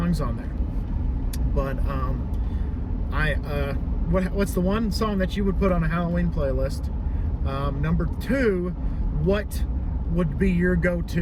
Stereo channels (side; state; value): both; identical; correlation 1.00